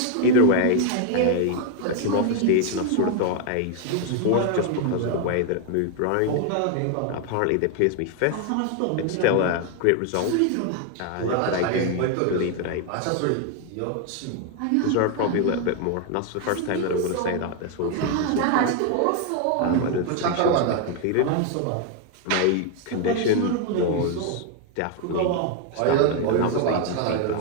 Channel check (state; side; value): different; both; correlation 0.01